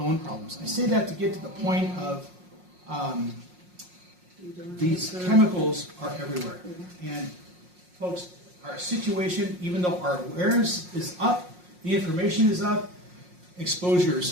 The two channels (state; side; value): late; left; 5.6 ms